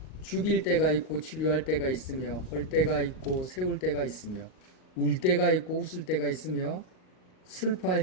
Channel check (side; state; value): right; late; 38 ms